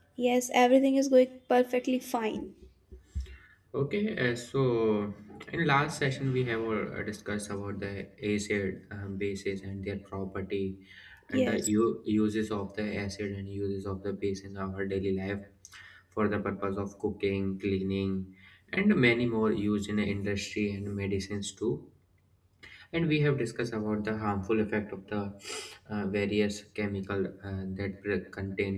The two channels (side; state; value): both; identical; correlation 1.00